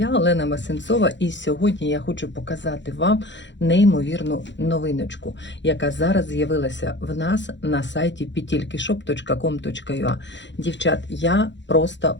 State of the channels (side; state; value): right; late; 0.52 ms